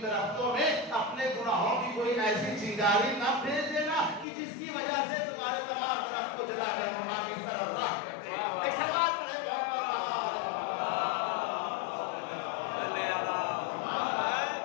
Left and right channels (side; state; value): right; drops out; at 4.2 s